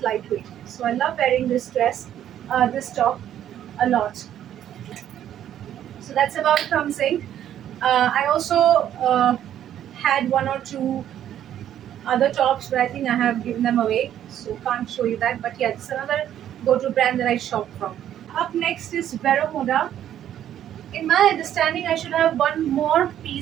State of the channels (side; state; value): left; quieter; 10.9 dB